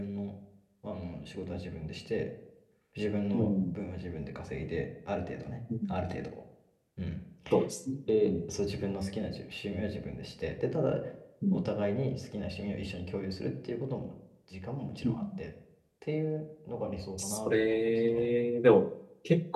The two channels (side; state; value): both; identical; correlation 1.00